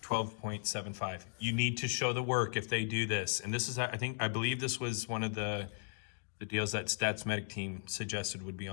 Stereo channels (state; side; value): silent; right; digital silence